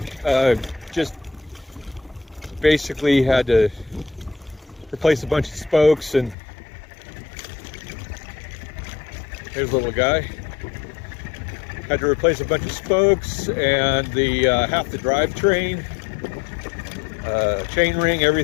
Just basically had to replace a bunch of spokes, and there's a little guy. Had to replace a bunch of spokes and the half the drivetrain, chain ring,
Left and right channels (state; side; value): drops out; right; at 6.4 s